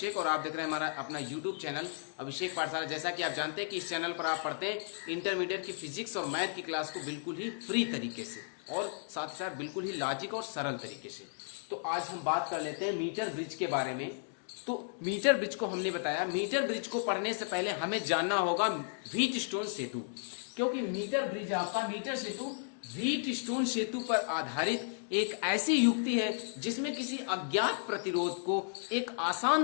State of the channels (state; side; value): silent; right; digital silence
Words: और आप देख रहे हैं हमारा अपना यूट्यूब चैनल अभिषेक पाठशाला। जैसा कि आप जानते हैं कि इस चैनल पर आप पढ़ते हैं इंटरमीडिएट की फिजिक्स और मैथ की क्लास को बिल्कुल ही फ्री तरीके से और साथ ही साथ बिल्कुल ही लॉजिक और सरल तरीके से। तो आज हम बात कर लेते हैं मीटर ब्रिज के बारे में। तो मीटर ब्रिज को हमने बताया, मीटर ब्रिज को पढ़ने से पहले हमें जानना होगा व्हीटस्टोन सेतु, क्योंकि मीटर ब्रिज आपका मीटर सेतु व्हीटस्टोन सेतु पर आधारित एक ऐसी युक्ति है जिसमें किसी अज्ञात प्रतिरोध को एक